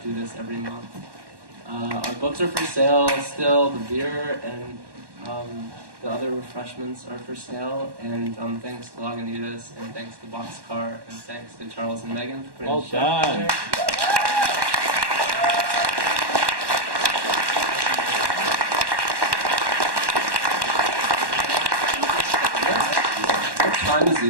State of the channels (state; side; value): late; left; 1.1 ms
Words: do this every month. Our books are for sale still. The beer and the other refreshments are for sale. And thanks to Lagunitas, and thanks to Boxcar, and thanks to Charles and Megan for putting the show together. What time is